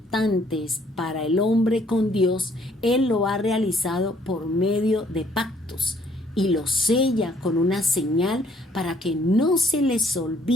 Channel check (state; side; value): normal; both; correlation 0.64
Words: para el hombre con Dios, Él lo ha realizado por medio de pactos. Y lo sella con una señal para que no se les